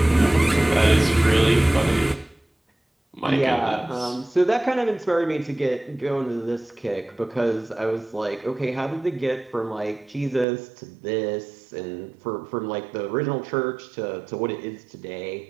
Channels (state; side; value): drops out; left; at 10.5 s